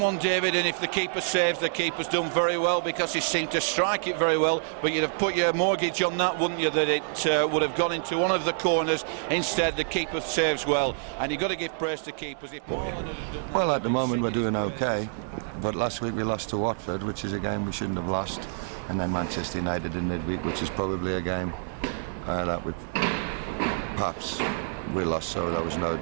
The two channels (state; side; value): silent; left; 60 dB below the other